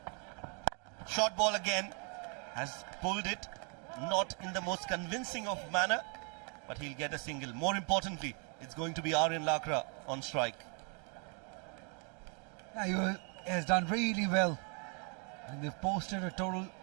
Short ball again, has pulled it, not in the most convincing of manner, but he'll get a single. More importantly, it's going to be Aryan Lakra on strike. Yeah, he has done really well. And they've posted a total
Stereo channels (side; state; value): left; quieter; 37.5 dB